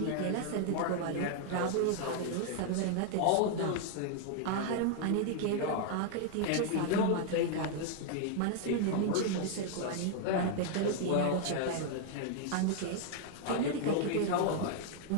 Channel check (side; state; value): both; different; correlation 0.00